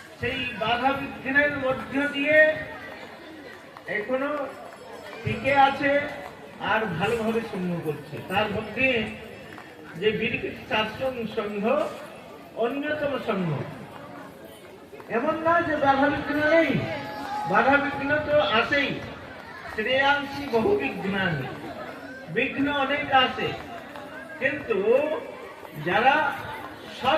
সেই বাধা বিঘ্নের মধ্য দিয়ে এখনো টিকে আছে আর ভালোভাবে সংঘ করছে। তার মধ্যে যে বিরকুটি সারস্বত সংঘ অন্যতম সংঘ। এমন না যে বাধা বিঘ্ন নেই, বাধা বিঘ্ন তো আসেই। শ্রেয়াংশী বহু বিঘ্নানি, বিঘ্ন অনেক আছে, কিন্তু যারা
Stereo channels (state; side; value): identical; both; correlation 1.00